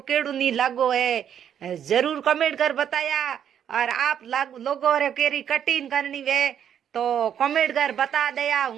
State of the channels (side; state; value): left; quieter; 9.2 dB